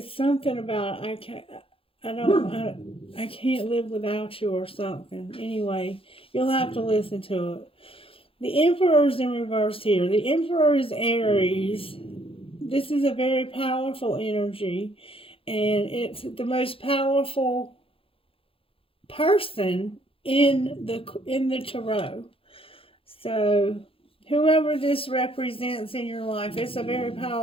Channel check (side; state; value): right; late; 0.27 ms